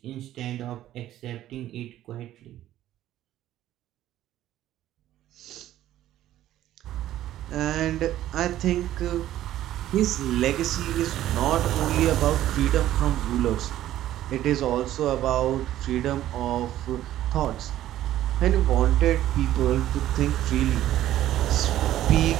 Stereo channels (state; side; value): quieter; left; 13.2 dB